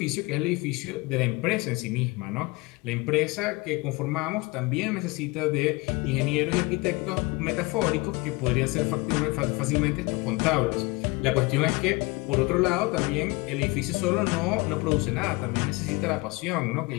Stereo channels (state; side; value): quieter; right; 24.3 dB